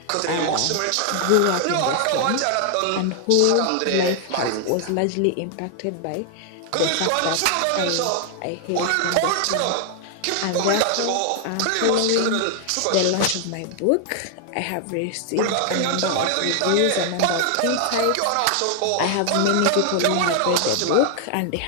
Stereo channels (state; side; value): different; both; correlation 0.00